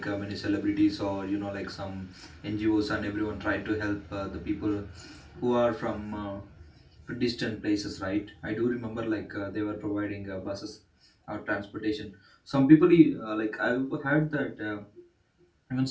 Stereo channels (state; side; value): identical; both; correlation 1.00